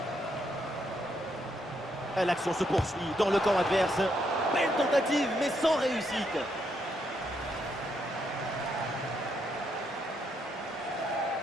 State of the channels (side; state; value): both; normal; correlation 0.77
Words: L'action se poursuit dans le camp adverse. Belle tentative, mais sans réussite.